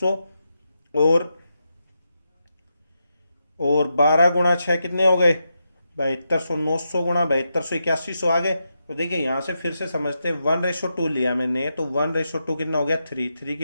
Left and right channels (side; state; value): both; inverted; correlation -0.86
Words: और 12 गुणा 6 कितने हो गए? 7200। 900 गुणा 7200 8100 आ गए। तो देखिए यहां से फिर से समझते हैं, 1:2 लिया मैंने, तो 1:2 कितना हो गया? 3 की